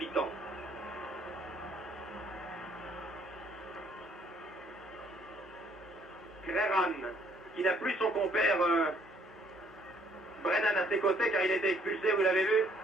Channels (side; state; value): both; normal; correlation 0.64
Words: Creran, qui n'a plus son compère Brennan à ses côtés car il a été expulsé, vous l'avez vu.